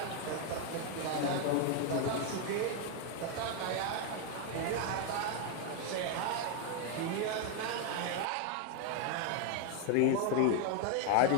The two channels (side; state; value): both; different; correlation 0.00